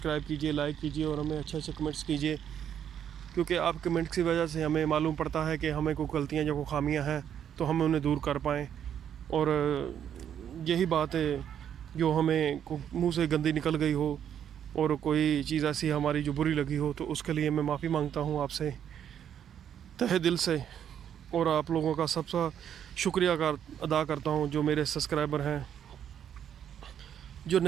कीजिए, लाइक कीजिए और हमें अच्छे अच्छे कमेंट्स कीजिए, क्योंकि आप कमेंट्स की वजह से हमें मालूम पड़ता है कि हमें कोई गलतियाँ या कोई खामियाँ हैं तो हम उन्हें दूर कर पाएँ। और यही बात है जो हमें मुंह से गंदी निकल गई हो और कोई चीज़ ऐसी हमारी जो बुरी लगी हो, तो उसके लिए मैं माफ़ी मांगता हूँ आपसे तहे दिल से। और आप लोगों का सबसे शुक्रिया अदा करता हूँ, जो मेरे सब्सक्राइबर हैं, जो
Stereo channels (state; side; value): quieter; left; 9.2 dB